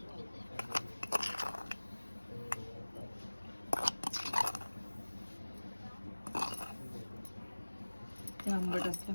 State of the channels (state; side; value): inverted; both; correlation -1.00